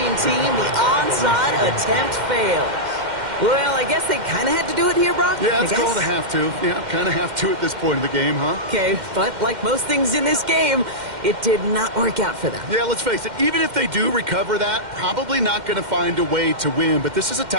team. The onside attempt fails. Well, I guess they kind of had to do it here, Brock? Yeah, it's called a have to. Yeah, kind of have to at this point in the game, huh? Okay, but like most things in this game, it did not work out for them. Yeah, let's face it, even if they do recover that, probably not going to find a way to win. But this is a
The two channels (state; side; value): late; left; 2.1 ms